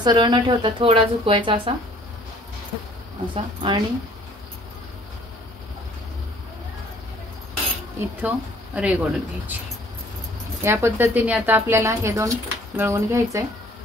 न ठेवता थोडा झुकवायचा असा असा, आणि इथं रेघ ओढून घ्यायची। या पद्धतीने आता आपल्याला हे दोन मिळवून घ्यायचंय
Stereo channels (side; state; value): both; normal; correlation 0.56